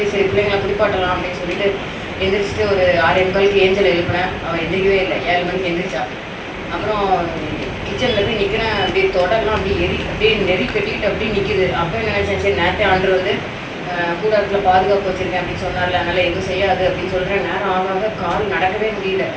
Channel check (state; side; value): identical; both; correlation 1.00